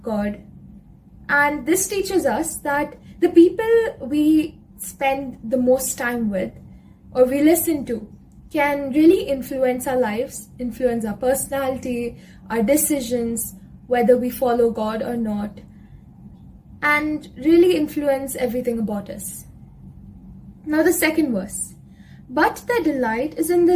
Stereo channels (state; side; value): identical; both; correlation 1.00